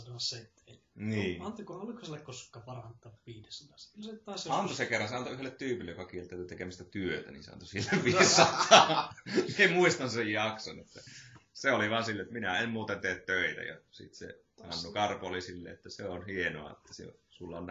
seteli. Niin. Oliko sille koskaan parantaa 500? Antoi se kerran, se antoi yhdelle tyypille, joka kieltäytyi tekemistä työtä, niin se antoi sille 500. En muistan sen jakson. Että se oli vaan silleen, että minä en muuten tee töitä. Ja sitten se Hannu Karpo oli silleen, että se on hienoa, että sulla on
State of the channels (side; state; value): both; identical; correlation 1.00